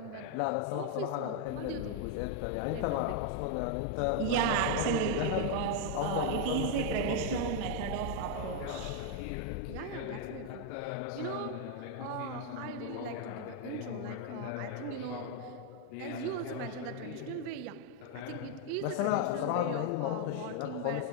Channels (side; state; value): both; different; correlation 0.01